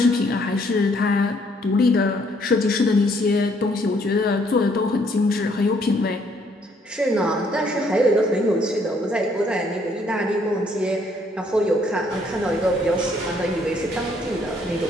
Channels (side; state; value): both; normal; correlation 0.66